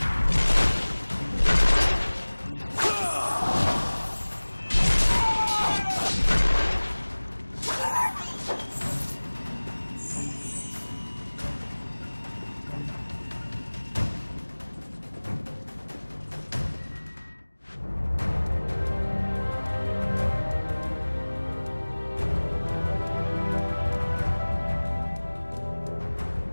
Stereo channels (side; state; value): both; inverted; correlation -1.00